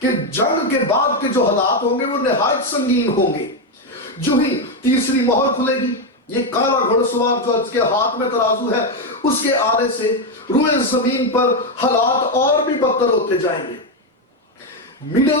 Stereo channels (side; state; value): both; normal; correlation 0.06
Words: کہ جنگ کے بعد کے جو حالات ہوں گے وہ نہایت سنگین ہوں گے. جو ہی تیسری مہر کھلے گی, یہ کالا گھڑ سوار جو اس کے ہاتھ میں ترازو ہے, اس کے آنے سے روئے زمین پر حالات اور بھی بدتر ہوتے جائیں گے. مڈل